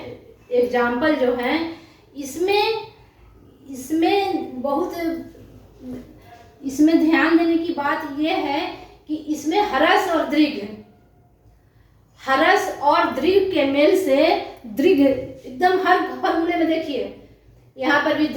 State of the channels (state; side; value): identical; both; correlation 1.00